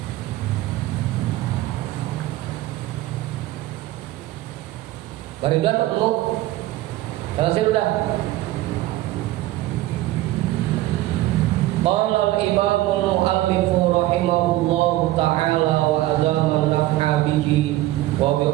Baridan ketemu. Selesai sudah. Qala al-imam al-muallif rahimahullahu ta'ala wa adama naf'a bihi wa bi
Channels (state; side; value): quieter; left; 16.4 dB